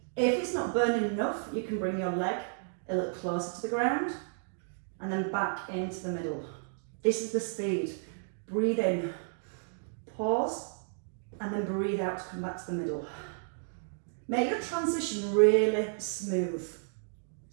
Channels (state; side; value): silent; left; digital silence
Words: If it's not burning enough, you can bring your leg a little closer to the ground and then back into the middle. This is the speed. Breathe in, pause, and then breathe out to come back to the middle. Make your transition really smooth.